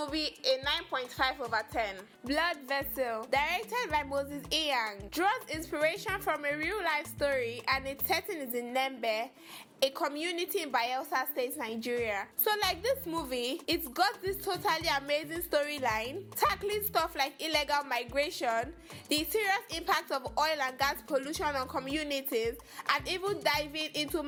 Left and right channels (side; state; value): both; identical; correlation 1.00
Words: a 9.5 over 10. Blood Vessel, directed by Moses Iyang, draws inspiration from a real-life story, and its setting is in Nembe, a community in Bayelsa State, Nigeria. So like this movie, it's got this totally amazing storyline, tackling stuff like illegal migration, the serious impact of oil and gas pollution on communities, and even diving into